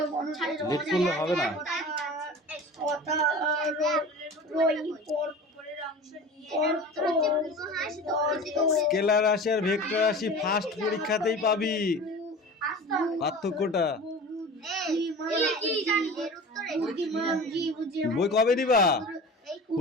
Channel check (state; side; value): normal; both; correlation 0.36